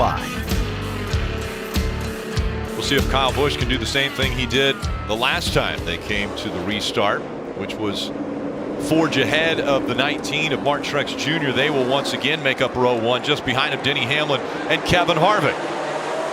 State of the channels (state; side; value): identical; both; correlation 1.00